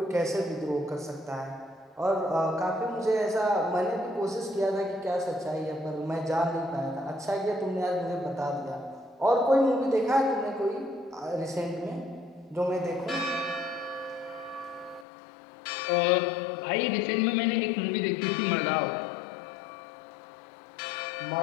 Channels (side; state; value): right; drops out; at 15.1 s